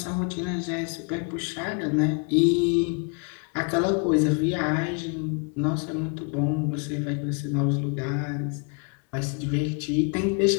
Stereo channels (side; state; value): right; quieter; 37.0 dB